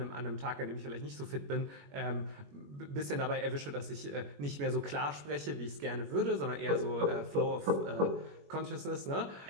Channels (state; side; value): late; left; 21 ms